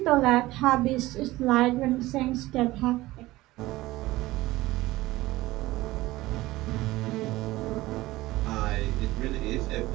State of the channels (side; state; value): left; quieter; 18.2 dB